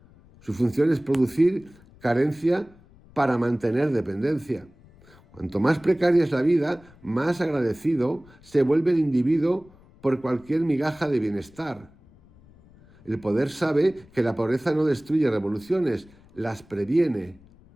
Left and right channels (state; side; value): noise; left; rumble, 26 dB below the sound